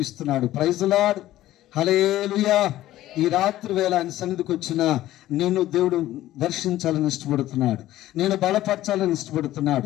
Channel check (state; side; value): quieter; right; 14.6 dB